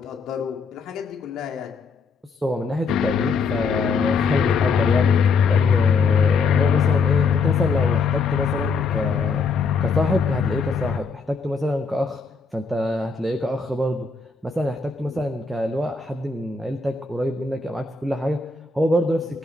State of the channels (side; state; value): right; quieter; 4.7 dB